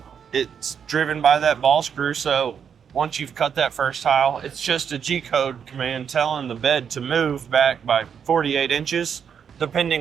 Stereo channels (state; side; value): quieter; left; 7.5 dB